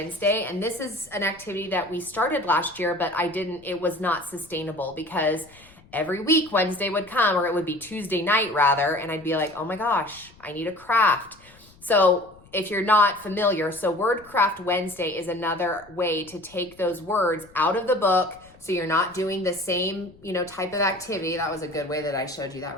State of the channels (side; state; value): left; noise; rumble, 26 dB below the sound